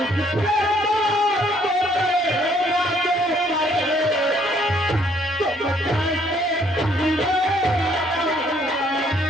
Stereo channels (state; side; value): normal; both; correlation 0.65